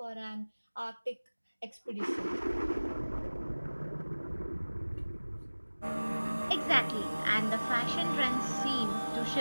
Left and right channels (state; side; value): inverted; both; correlation -1.00